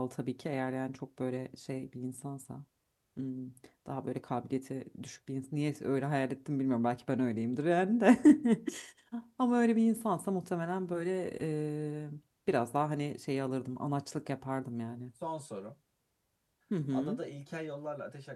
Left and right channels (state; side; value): identical; both; correlation 1.00